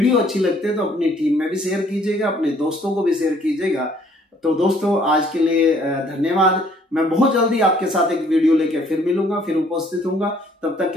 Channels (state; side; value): normal; both; correlation 0.61